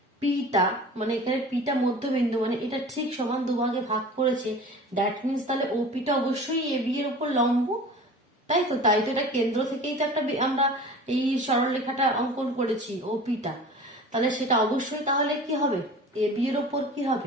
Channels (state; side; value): normal; both; correlation 0.40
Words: পিটা, মানে এখানে পিটা মধ্যবিন্দু, মানে এটা ঠিক সমান দুভাগে ভাগ করেছে, দ্যাট মিনস তাহলে ওপিটা অবশ্যই এ বি এর উপর লম্ব, তাই তো। তাই তো এটা কেন্দ্র থেকেই তো একটা আমরা এই সরলরেখাটা অঙ্কন করেছি ওপিটা, তাহলে সেটা অবশ্যই তাহলে কি হবে, এ বি এর উপর কি